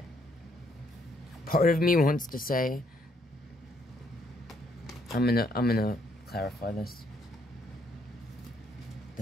part of me wants to say, I'm gonna clarify this.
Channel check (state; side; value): normal; both; correlation 0.70